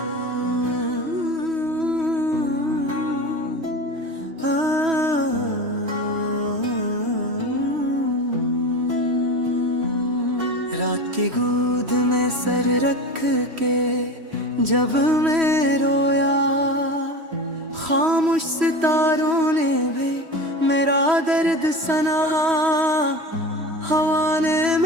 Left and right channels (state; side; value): late; left; 3.1 ms